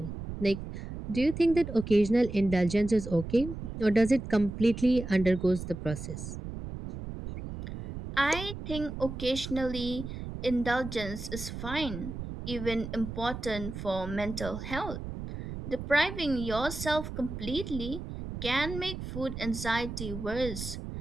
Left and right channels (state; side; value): noise; right; rumble, 8 dB below the sound